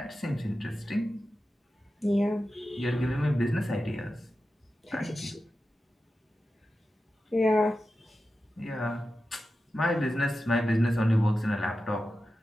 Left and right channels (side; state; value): both; normal; correlation 0.92